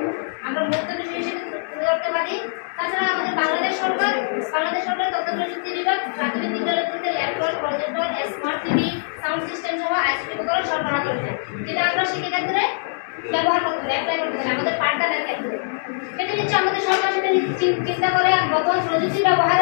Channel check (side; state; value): right; silent; digital silence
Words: আমরা মূর্ত বিষয় হিসেবে তুলে ধরতে পারি। তাছাড়া আমাদের বাংলাদেশ সরকার তথ্য প্রযুক্তি বিভাগ প্রাথমিক বিদ্যালয়গুলিতে laptop, projector, smart TV, sound system সহ আইসিটি উপকরণ সরবরাহ করেছে, যেটা আমরা শিক্ষাক্ষেত্রে ব্যবহার করতে পারি, অ্যাপ্লাই করতে পারি আমাদের পাঠদানের ক্ষেত্রে। সেটা হচ্ছে আমাদের সরকার সেটা চিন্তা করে বর্তমান প্রযুক্তি